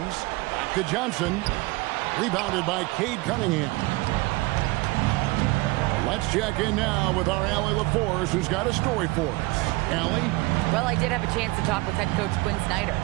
Back to Johnson. Rebounded by Cade Cunningham. Let's check in now with our Allie LaForce, who's got a story for us. Allie? Well, I did have a chance to talk with head coach Quinn Snyder.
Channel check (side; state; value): left; quieter; 22.8 dB